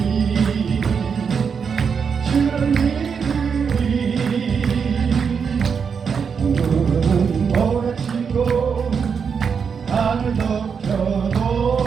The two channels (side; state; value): left; quieter; 6.3 dB